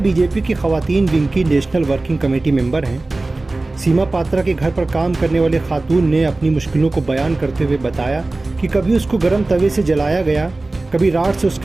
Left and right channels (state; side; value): quieter; left; 3.1 dB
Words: की खवातीन विंग की नेशनल वर्किंग कमेटी मेंबर हैं। सीमा पात्रा के घर पर काम करने वाली खातून ने अपनी मुश्किलों को बयान करते हुए बताया कि कभी उसको गर्म तवे से जलाया गया, कभी राड से